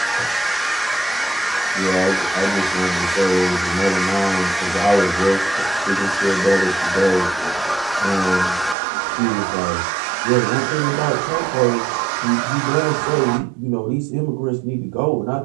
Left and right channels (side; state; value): left; drops out; at 8.8 s